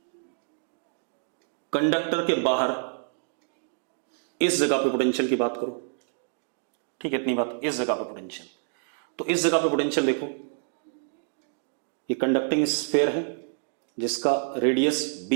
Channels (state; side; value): silent; left; digital silence